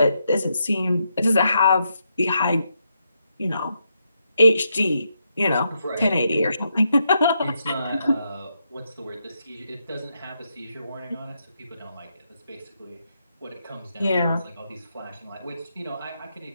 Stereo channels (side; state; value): both; inverted; correlation -0.81